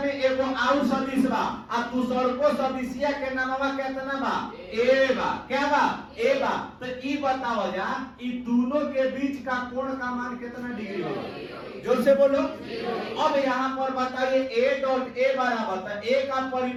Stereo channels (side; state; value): both; identical; correlation 1.00